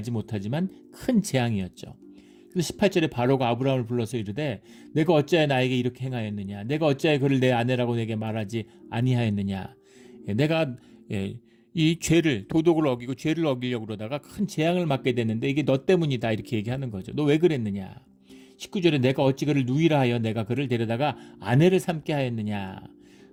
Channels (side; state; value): both; identical; correlation 1.00